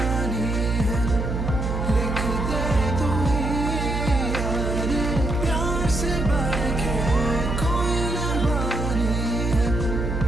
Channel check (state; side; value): noise; right; hum, 2 dB below the sound